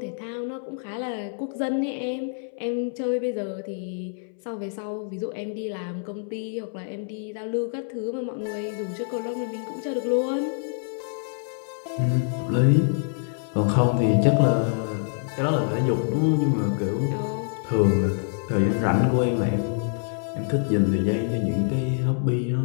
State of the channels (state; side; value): silent; right; 61 dB below the other